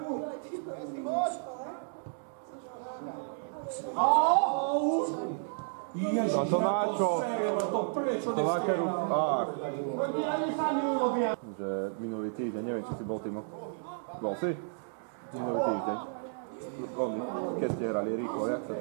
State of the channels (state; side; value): silent; left; digital silence